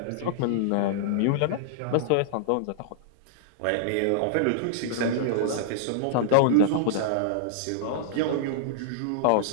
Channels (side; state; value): both; different; correlation -0.01